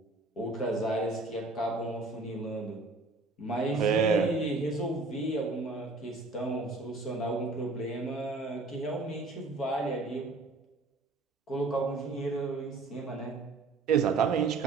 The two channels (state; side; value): quieter; left; 3.6 dB